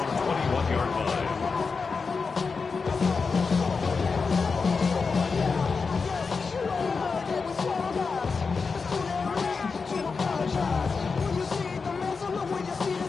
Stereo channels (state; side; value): quieter; right; 4.8 dB